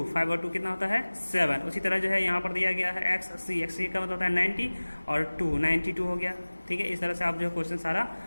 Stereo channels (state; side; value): inverted; both; correlation -1.00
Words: 5 और 2 कितना होता है 7। उसी तरह जो है यहाँ पर दिया गया है XC का मतलब होता है 90 और 2 92 हो गया, ठीक है। इस तरह से आप जो है क्वेश्चन सारा